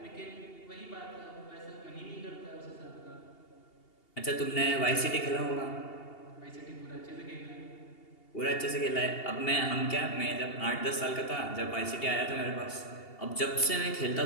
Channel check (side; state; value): right; late; 2.8 ms